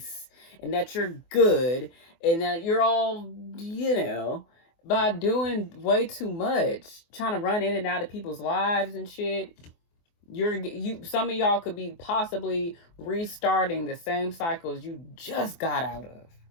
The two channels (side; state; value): right; late; 24 ms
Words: and that you're good and that you're all, by doing way too much, trying to run in and out of people's lives and shit. Some of y'all could be possibly restarting the same cycles you just got out of.